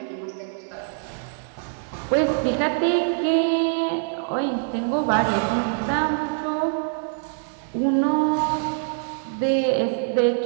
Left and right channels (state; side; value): silent; left; digital silence